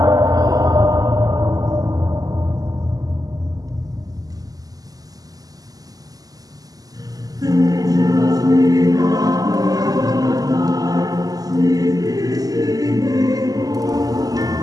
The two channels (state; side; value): late; left; 0.17 ms